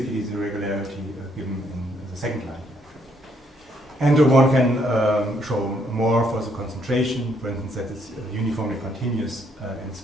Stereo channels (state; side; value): normal; both; correlation 0.71